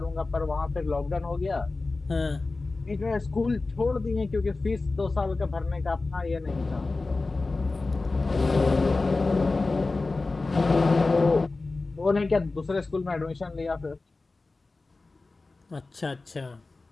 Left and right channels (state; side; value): quieter; right; 3.5 dB